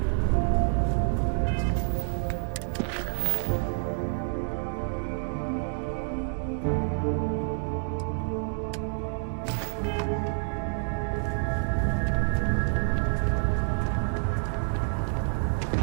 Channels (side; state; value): left; silent; 59 dB below the other